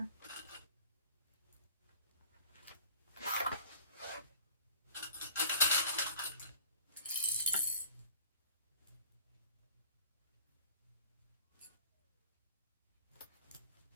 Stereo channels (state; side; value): inverted; both; correlation -0.47